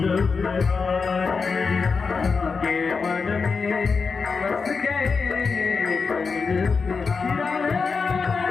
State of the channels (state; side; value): quieter; right; 5.0 dB